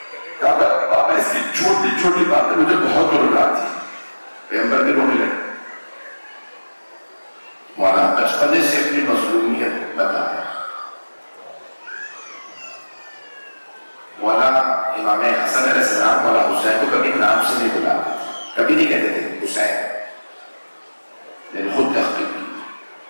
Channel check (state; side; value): inverted; both; correlation -1.00